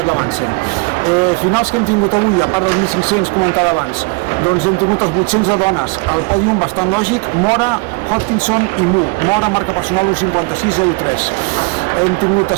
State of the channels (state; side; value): quieter; left; 29.7 dB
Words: Lamansen. Finals que hem tingut avui, a part dels 1.500 comentada abans, doncs hem tingut els 800 de dones, el pòdium bastant lògic, Mora, Hodgkinson i Mu. Mora marca personal 1:56:03. Hem tingut